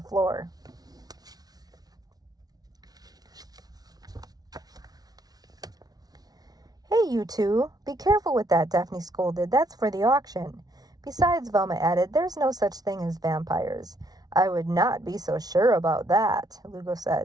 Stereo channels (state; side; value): late; left; 0.19 ms